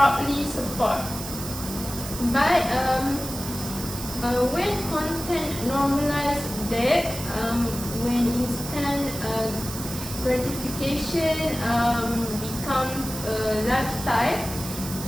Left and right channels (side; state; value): right; noise; hiss, 9 dB below the sound